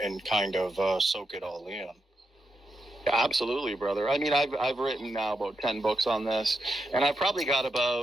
kind of soak it all in. Absolutely, brother. I mean, I've written now about 10 books on this, and I've probably got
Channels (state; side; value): normal; both; correlation 0.84